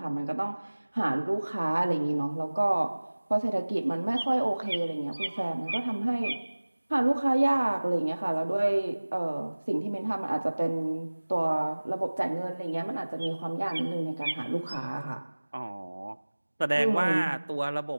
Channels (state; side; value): inverted; both; correlation -1.00